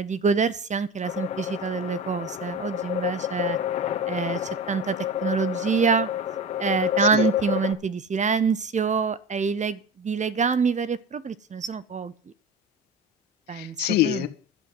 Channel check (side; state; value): both; normal; correlation 0.28